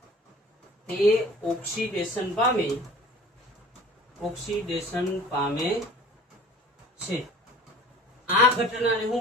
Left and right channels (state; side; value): normal; both; correlation 0.45